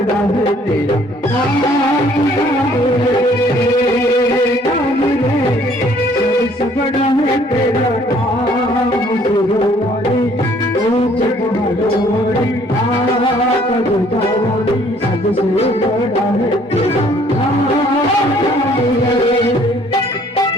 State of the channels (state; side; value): normal; both; correlation 0.60